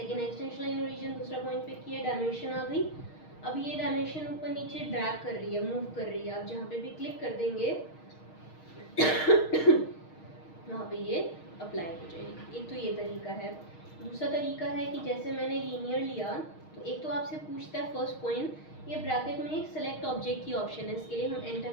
एक्सटेंशन लाइन ओरिजिन, दूसरा पॉइंट पिक किया, डायमेंशन आ गई। अब ये डायमेंशन ऊपर नीचे ड्रैग कर रही है, मूव कर रही है। आप जहाँ पे भी क्लिक कर देंगे वहाँ पे ये अप्लाई हो जाएगी। एक तो ये तरीका है। दूसरा तरीका है कि जैसे मैंने लीनियर लिया तो एक तो आपसे पूछता है फर्स्ट पॉइंट, ये ब्रैकेट में एक सेलेक्ट ऑब्जेक्ट की ऑप्शन है, इसके लिए हम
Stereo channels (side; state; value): right; late; 6.4 ms